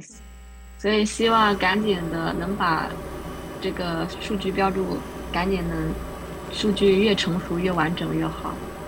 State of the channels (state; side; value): identical; both; correlation 1.00